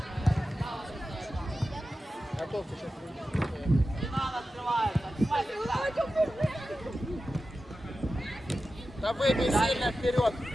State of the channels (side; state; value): both; normal; correlation 0.93